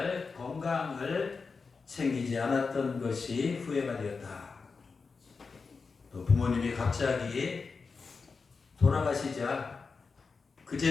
건강을 챙기지 않았던 것이 후회가 되었다. 또 부모님이 갑자기 돌아가시자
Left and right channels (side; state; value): right; quieter; 4.7 dB